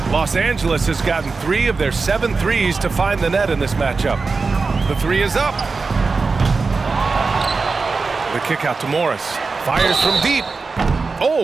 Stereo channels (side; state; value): left; quieter; 4.3 dB